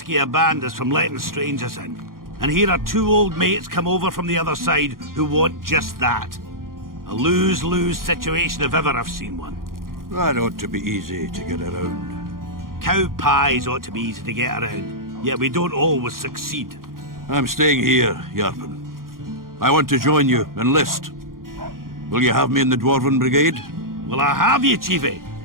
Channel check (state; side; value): late; left; 0.91 ms